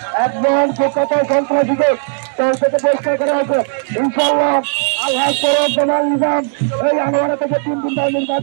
একজন কলকাতায় সন্ত্রাসীকে দল থেকে পরিষ্কার করা হয়েছে ইনশাআল্লাহ আল্লাহ করব জামাল নিজাম এই আনোয়ারা থেকে 3 দিন ধরে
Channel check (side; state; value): left; silent; digital silence